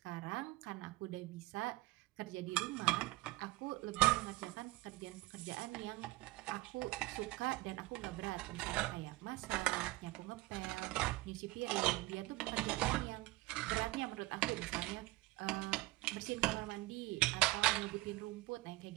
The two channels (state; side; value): quieter; left; 19.6 dB